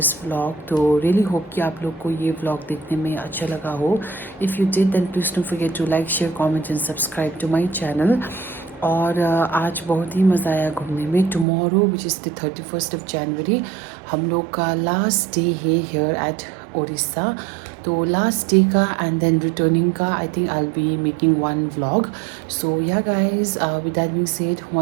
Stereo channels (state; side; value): drops out; left; at 11.5 s